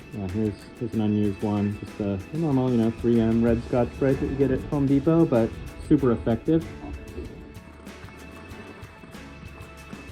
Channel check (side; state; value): both; identical; correlation 1.00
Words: here's an unused one, just a normal, 3M red Scotch-Brite that you get at Home Depot, but super effective.